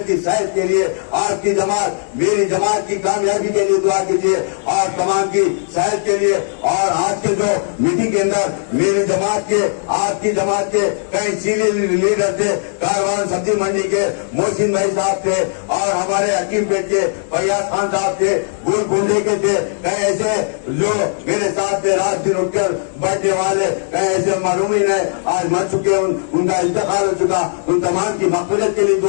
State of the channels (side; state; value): right; silent; digital silence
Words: की सेहत के लिए। आपकी जमात, मेरी जमात की कामयाबी के लिए दुआ कीजिए और तमाम की सेहत के लिए। और आज के जो मीटिंग के अंदर मेरी जमात के, आपकी जमात के कई सीनियर लीडर थे, कारवान सब्जी मंडी के मोहसिन भाई साहब थे और हमारे हकीम पेट के फैयाज खान साहब थे, गोलकुंडे के थे, कई ऐसे जो मेरे साथ थे रात दिन उठकर बैठने वाले, कई ऐसे मरहूमीन है आज मर चुके, उनका इंतकाल हो चुका। उन तमाम की मग़फ़िरत के लिए